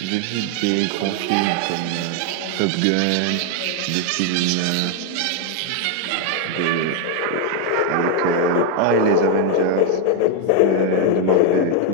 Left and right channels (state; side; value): different; both; correlation 0.01